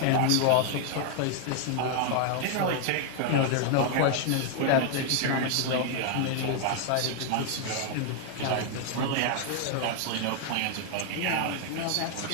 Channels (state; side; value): different; both; correlation 0.00